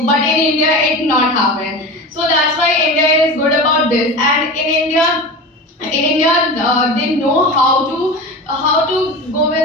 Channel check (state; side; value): normal; both; correlation 0.29